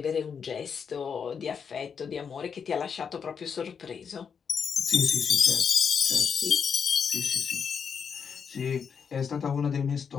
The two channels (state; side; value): quieter; right; 6.5 dB